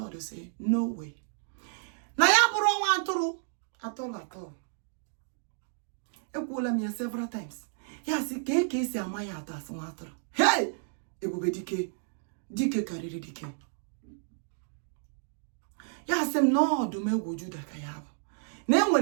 will say, no way. Na ya buru waturu at all. Ekwula me several times. Ya si ke si amaya atas waturu. Hey! Ebube Dike kariri Dike. Ya sem no Odumegwu Juda ka ya bụ. Na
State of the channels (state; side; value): silent; left; digital silence